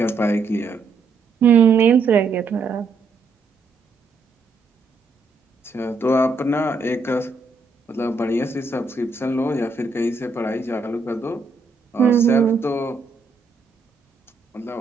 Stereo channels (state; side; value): quieter; left; 4.0 dB